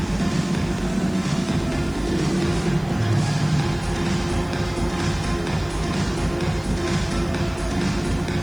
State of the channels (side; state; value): right; noise; hiss, 28 dB below the sound